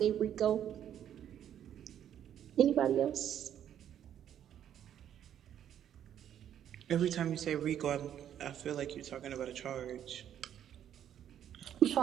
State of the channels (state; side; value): quieter; left; 10.1 dB